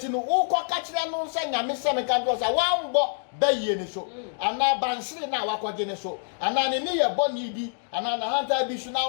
no ukọ ka kire no say nyame say me kan do say wambo bayi ni so ana bansiri na wakogi ni so ana ne ne ye boni bi ana na hanta bi su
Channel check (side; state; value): right; silent; digital silence